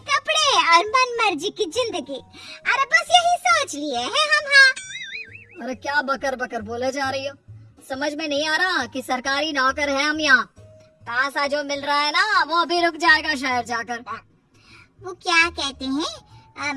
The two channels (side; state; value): both; identical; correlation 1.00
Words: कपड़े और मन मर्जी की जिंदगी। अरे बस यही सोच लिए हैं हम। हाँ, अरे क्या बकर बकर बोले जा रही हो? समझ में नहीं आ रहा कि सरकारी नौकर है हम यहाँ। पैसा जो मिल रहा है ना वो भी रुक जाएगा शहर जाकर। वो क्या कहते